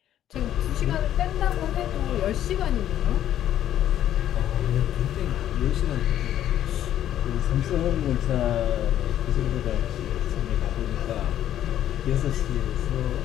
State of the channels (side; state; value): right; quieter; 11.5 dB